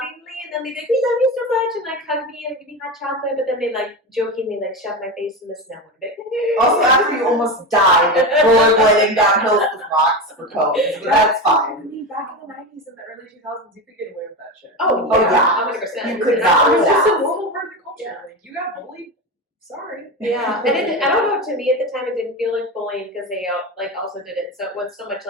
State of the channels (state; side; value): normal; both; correlation 0.20